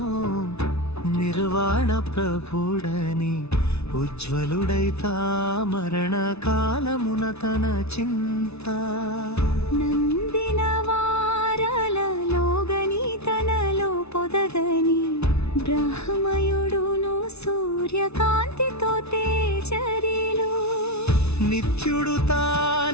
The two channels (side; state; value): right; late; 0.80 ms